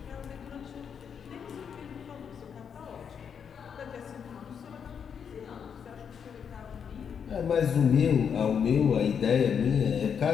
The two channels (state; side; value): quieter; right; 7.3 dB